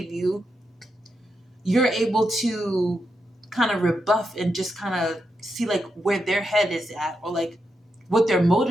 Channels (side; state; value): both; normal; correlation 0.85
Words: you, you're able to kind of rebuff and just kind of see like where their head is at, or like what their